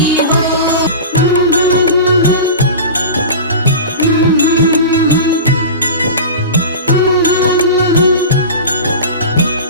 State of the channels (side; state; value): both; inverted; correlation -0.30